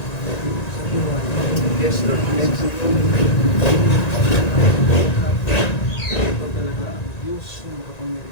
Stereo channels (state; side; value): late; right; 1.9 ms